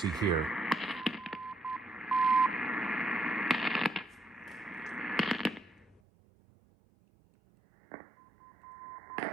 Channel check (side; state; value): left; drops out; at 6.0 s